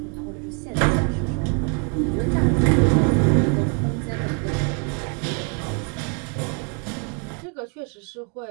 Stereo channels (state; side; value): quieter; left; 38.2 dB